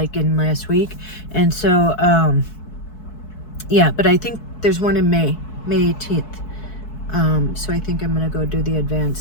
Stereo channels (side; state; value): right; late; 4.6 ms